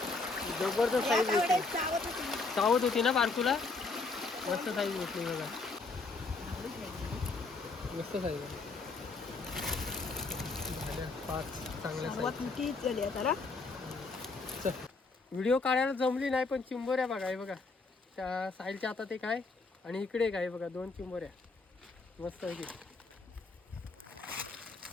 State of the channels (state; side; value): quieter; right; 3.8 dB